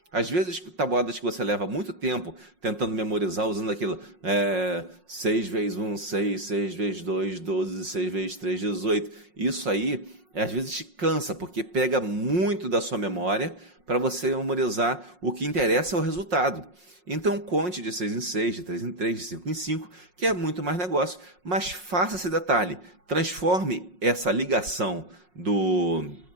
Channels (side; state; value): left; late; 5.5 ms